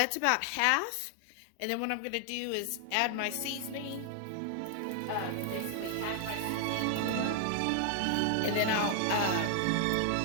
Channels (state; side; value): different; both; correlation 0.00